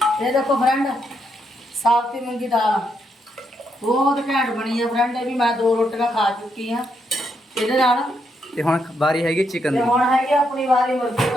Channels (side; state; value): both; normal; correlation 0.78